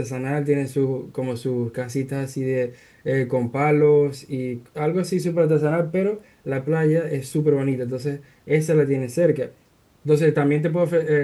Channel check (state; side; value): identical; both; correlation 1.00